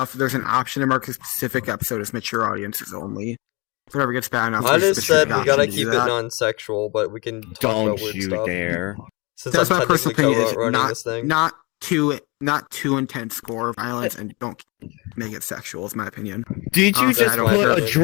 there's an option to mark a specific episode as mature audiences only. If it ever gets bad enough, I there's a just specific said we option gotta to do keep it that. non-sexual, but we can talk Don't about weird you stuff. dare. Since That's I'm my personal technically opinion. Is running not this thing. not too not too intense gore violence, and don't make it sexual. Is my opinion. Did you Honestly, just I don't put care a if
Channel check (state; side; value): quieter; right; 26.2 dB